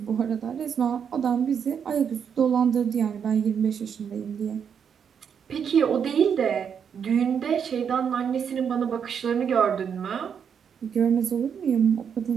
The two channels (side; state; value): left; quieter; 7.4 dB